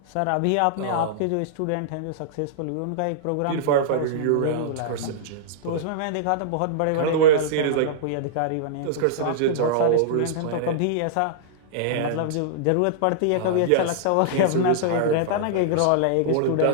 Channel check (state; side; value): different; both; correlation -0.02